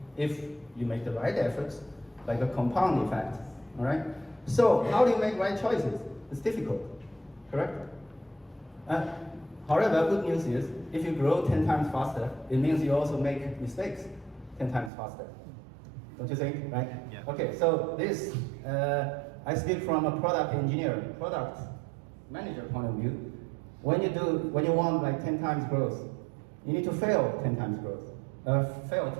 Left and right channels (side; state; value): left; drops out; at 14.9 s